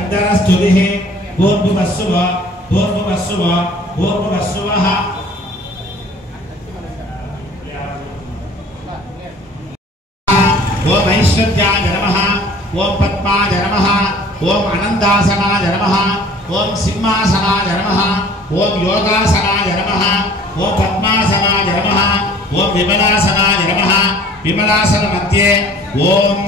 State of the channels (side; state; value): both; normal; correlation 0.50